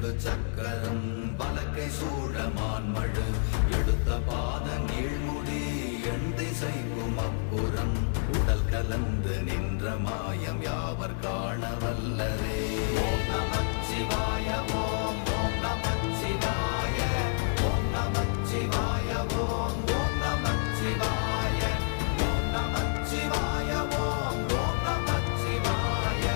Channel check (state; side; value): silent; right; 59 dB below the other